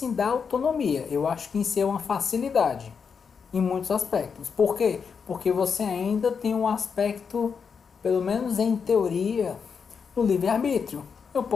da autonomia, eu acho que em si é uma facilidade, em muitos aspectos. Por quê? Porque você ainda tem um aspecto, pelo menos em teoria, do livre-arbítrio. Eu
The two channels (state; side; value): quieter; right; 6.1 dB